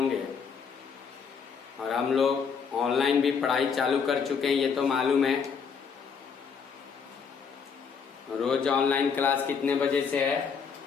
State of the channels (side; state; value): right; quieter; 6.1 dB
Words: और हम लोग ऑनलाइन भी पढ़ाई चालू कर चुके हैं, ये तो मालूम है। रोज ऑनलाइन क्लास कितने बजे से है?